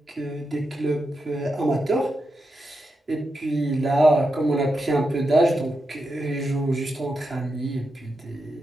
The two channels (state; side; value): normal; both; correlation 0.87